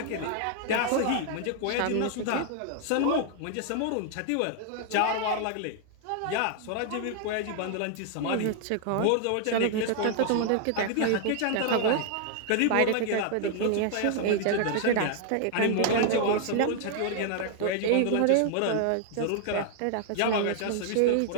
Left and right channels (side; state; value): both; different; correlation 0.00